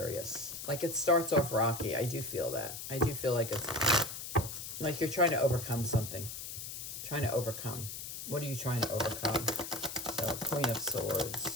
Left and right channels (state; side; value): noise; left; hiss, 8 dB below the sound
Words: Like it starts off rocky. I do feel that. I do feel like it's like you're trying to overcome something. Trying to overcome. What are you trying to overcome? So Queen of